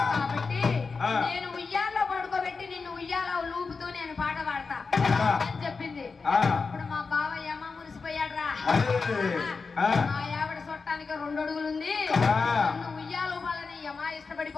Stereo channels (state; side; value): quieter; right; 4.6 dB